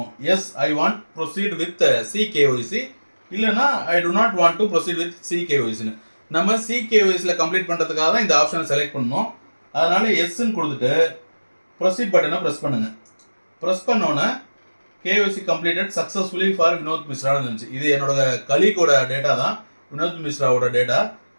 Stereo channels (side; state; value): both; inverted; correlation -1.00